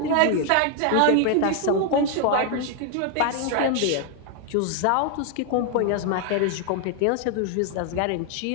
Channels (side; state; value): both; different; correlation 0.00